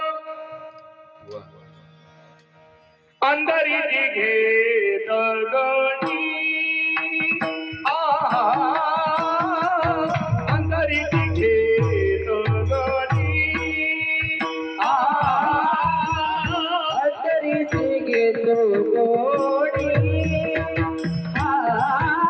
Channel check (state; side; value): identical; both; correlation 1.00